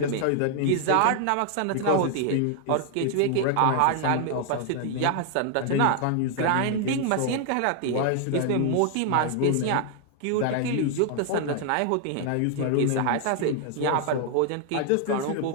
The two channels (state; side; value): different; both; correlation 0.00